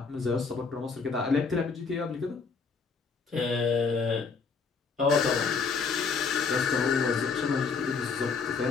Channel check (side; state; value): right; quieter; 5.1 dB